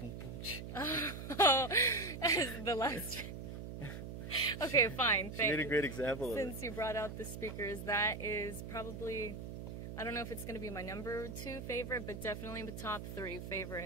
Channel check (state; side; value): noise; right; hum, 8 dB below the sound